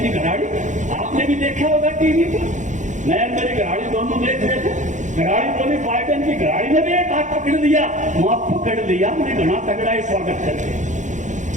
की घराड़ी, आपने भी देखा होगा टीवी पर, मैं मेरी घराड़ी दोनों देख रहे थे। घराड़ी बोली बाइडेन की घराड़ी ने भी एक हाथ पकड़ लिया, वहां पकड़ लिया, मैंने घना तगड़ा ही स्वागत करके।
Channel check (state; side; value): late; left; 0.35 ms